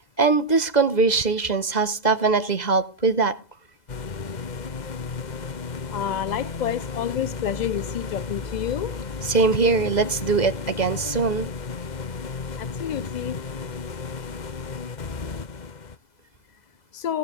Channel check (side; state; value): right; late; 2.0 ms